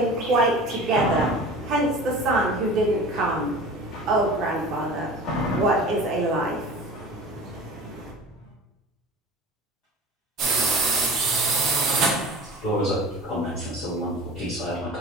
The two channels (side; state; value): both; normal; correlation 0.38